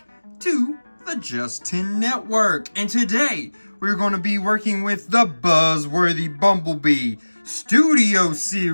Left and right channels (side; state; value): both; inverted; correlation -1.00